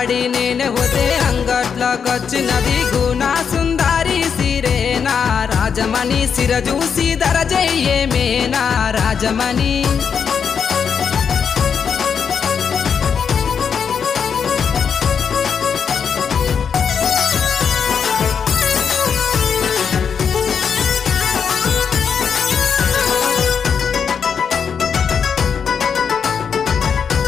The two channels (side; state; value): right; quieter; 6.8 dB